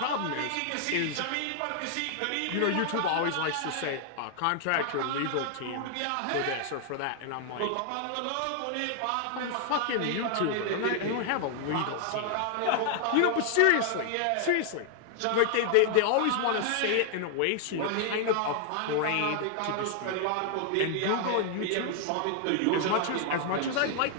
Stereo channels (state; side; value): different; both; correlation 0.00